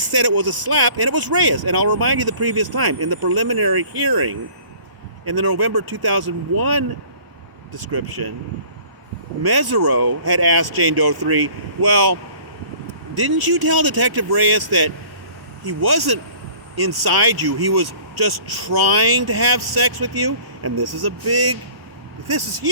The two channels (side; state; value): left; late; 1.0 ms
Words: it was a slap and it was Reyes. And I'll remind you the previous time, in the preliminary hearing, in the November 2001 description, Mesereau had asked Jane Doe 3, well, didn't you tell Detective Reyes that he wasn't inside you, he was just trying to have sex with you? And this is